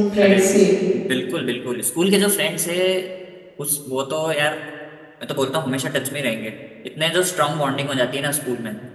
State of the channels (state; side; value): identical; both; correlation 1.00